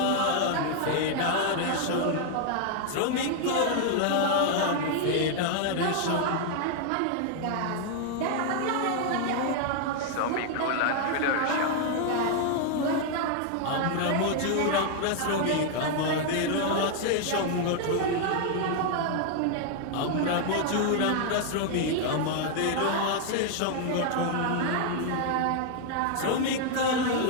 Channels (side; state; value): both; different; correlation 0.00